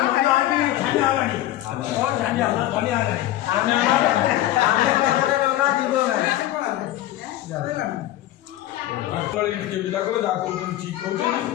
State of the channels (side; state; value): right; quieter; 14.4 dB